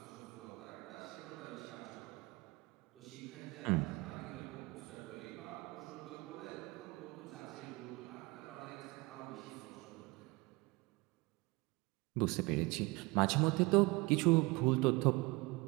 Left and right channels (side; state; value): left; quieter; 24.6 dB